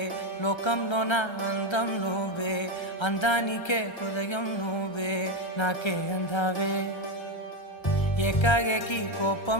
లోకంలో నా అందం నువ్వే, అందానికే హృదయం నువ్వే, నాకే అందావే. ఏకాఏకి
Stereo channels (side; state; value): right; late; 1.3 ms